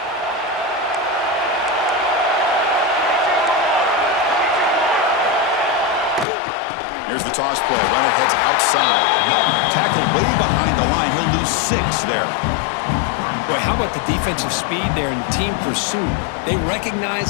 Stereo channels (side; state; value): right; drops out; at 6.2 s